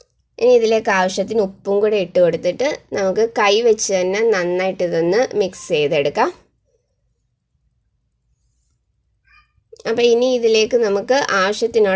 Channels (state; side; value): identical; both; correlation 1.00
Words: ഇനി ഇതിലേക്ക് ആവശ്യത്തിന് ഉപ്പും കൂടെ ഇട്ട് കൊടുത്തിട്ട് നമുക്ക് കൈ വെച്ച് തന്നെ നന്നായിട്ട് ഇതൊന്ന് മിക്സ് ചെയ്തെടുക്കാം. അപ്പോൾ ഇനി ഇതിലേക്ക് നമുക്ക്